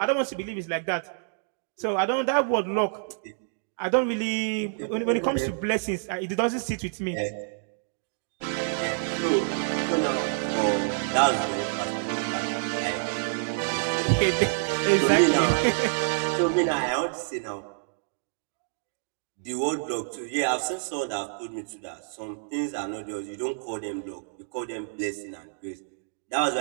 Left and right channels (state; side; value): silent; left; digital silence